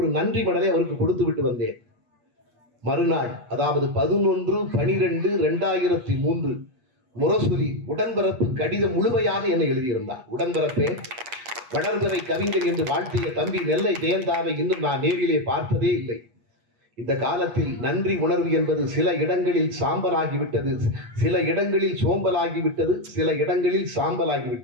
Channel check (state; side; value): late; left; 8.3 ms